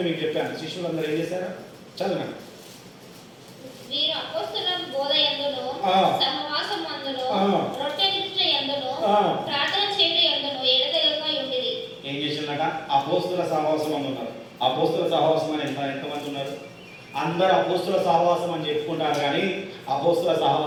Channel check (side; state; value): both; identical; correlation 1.00